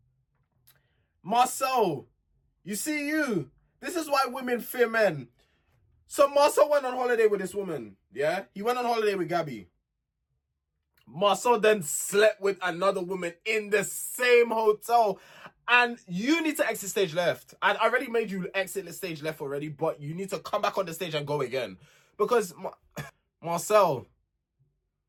Marcel, you see you. This is why women fear men. So Marcel went on holiday with this woman. Yeah, he went on holiday with Gabby. Marcel then slept with another woman in the same hotel. And you need to exit stage left. I already made you exit the stage left already, but you need to come back on the stage and go again. Because Marcel,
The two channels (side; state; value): both; identical; correlation 1.00